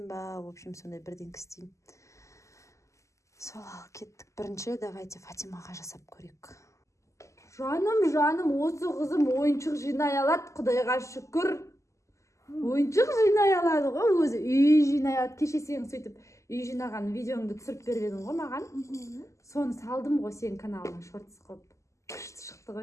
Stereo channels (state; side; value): late; right; 0.15 ms